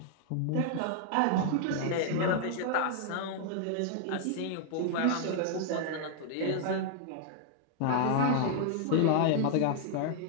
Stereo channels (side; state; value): both; different; correlation 0.00